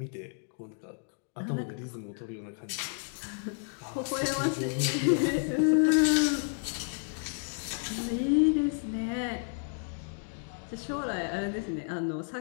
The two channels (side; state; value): right; silent; 56 dB below the other